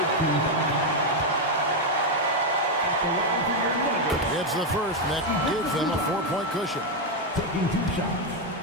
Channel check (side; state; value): both; normal; correlation 0.04